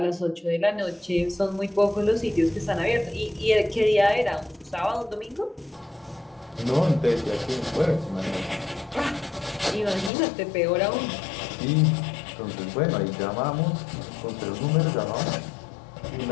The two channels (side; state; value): right; drops out; at 10.1 s